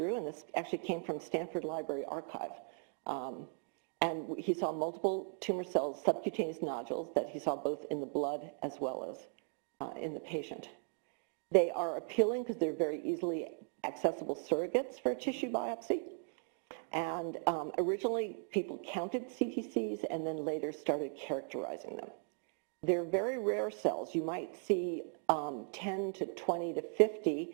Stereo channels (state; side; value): silent; left; 53 dB below the other